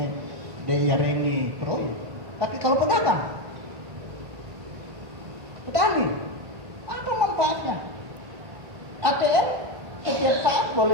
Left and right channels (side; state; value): left; late; 1.1 ms